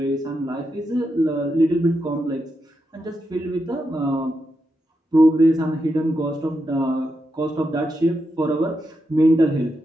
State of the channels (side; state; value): both; normal; correlation 0.85